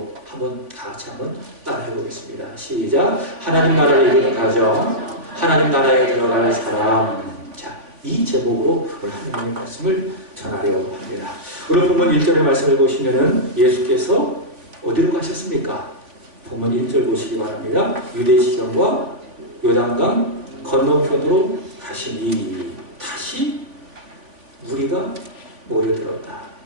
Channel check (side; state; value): left; late; 3.6 ms